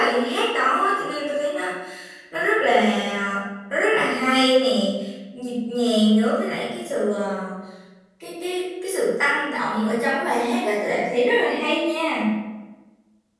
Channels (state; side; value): identical; both; correlation 1.00